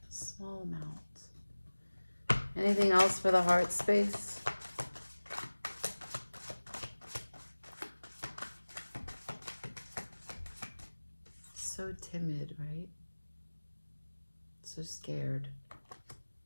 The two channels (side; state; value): both; inverted; correlation -1.00